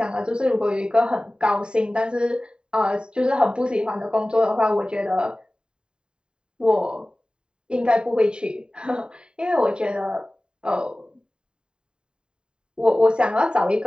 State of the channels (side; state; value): left; late; 0.049 ms